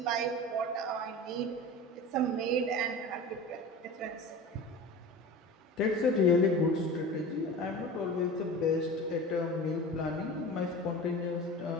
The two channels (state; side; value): normal; both; correlation 0.34